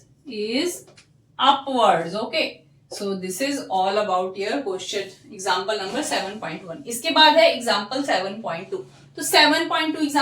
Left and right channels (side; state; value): both; identical; correlation 1.00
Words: Okay, so this is all about your question example number 7.1. इसके बाद है example 7.2. तो 7.2